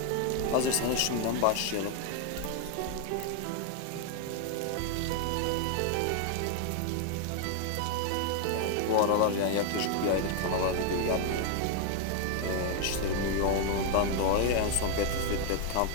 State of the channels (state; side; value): different; both; correlation 0.00